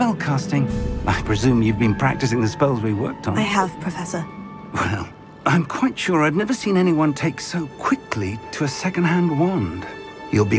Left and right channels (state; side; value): identical; both; correlation 1.00